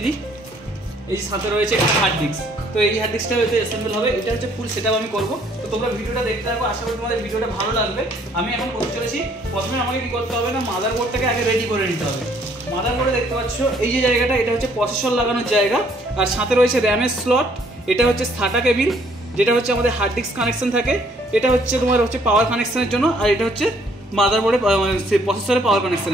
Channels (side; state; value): both; normal; correlation 0.63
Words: দিই, এই যে সাথে রয়েছে একটা হার্ড ডিস্ক। তো এই হার্ড ডিস্কটা হয়তো অ্যাসেম্বল হবে, এটা হচ্ছে ফুল সেটআপ আমি করব। তো তোমরা ভিডিওটা দেখতে থাকো, আশা করি তোমাদের ভিডিওটা ভালো লাগবে। আমি এখন করতে চলেছি, প্রথমে আমাকে কি করতে হবে না, মাদারবোর্ডটাকে আগে রেডি করে নিতে হবে। মাদারবোর্ডে দেখতে পাচ্ছ এই যে জায়গাটা, এটা হচ্ছে প্রসেসর লাগানোর জায়গা, আর সাথে রয়েছে র্যামের স্লট, এটা হচ্ছে SATA কেবিল, যেটা হচ্ছে আমাদের হার্ড ডিস্ক কানেকশন থাকে, এটা হচ্ছে তোমার হচ্ছে পাওয়ার কানেকশনের জন্য, আর এটা হচ্ছে মাদারবোর্ডে প্রসেসরের পাওয়ার